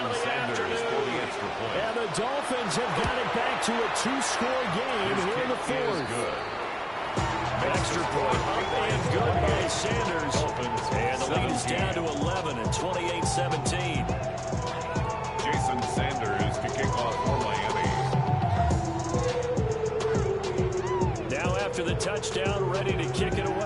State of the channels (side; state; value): both; identical; correlation 1.00